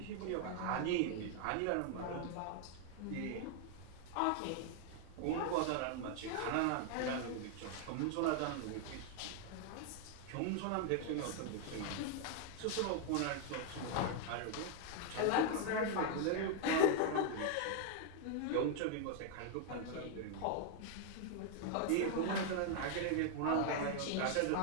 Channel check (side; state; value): both; different; correlation 0.00